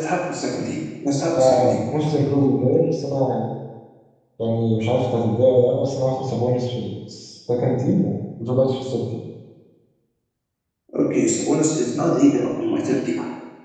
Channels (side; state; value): both; identical; correlation 1.00